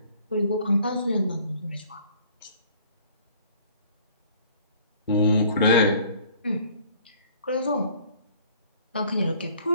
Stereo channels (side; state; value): both; inverted; correlation -0.55